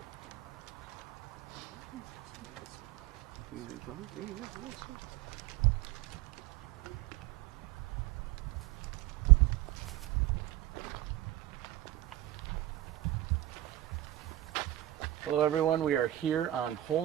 Hello everyone, we are here on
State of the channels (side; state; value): left; quieter; 14.8 dB